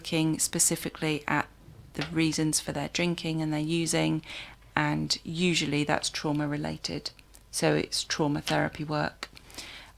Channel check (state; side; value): identical; both; correlation 1.00